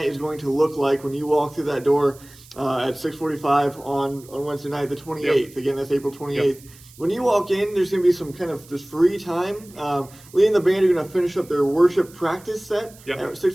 is going to look like when you walk through that door at 6:45 on Wednesday night, the 28th. Again, that's April 28th. When you walk in, there's going to be some kind of just free time. Lee and the band are going to finish up their worship practice set at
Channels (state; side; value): noise; right; hiss, 23 dB below the sound